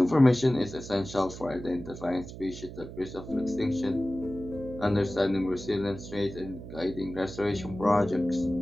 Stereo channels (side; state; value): right; noise; hum, 12 dB below the sound